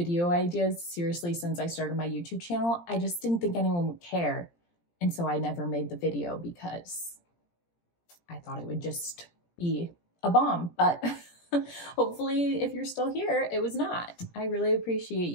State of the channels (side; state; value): right; late; 17 ms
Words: ideas seriously since I started my YouTube channel. I just didn't think anyone would care. And so I never made the video because I thought it would just be a bomb. But hopefully, if you're still here, it was not. I really appreciate